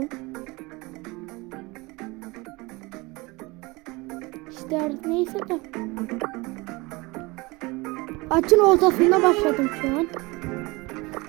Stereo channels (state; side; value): quieter; left; 24.2 dB